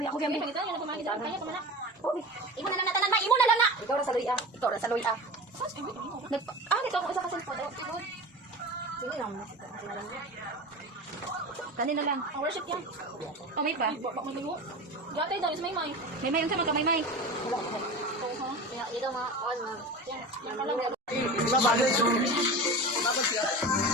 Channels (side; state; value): both; normal; correlation 0.31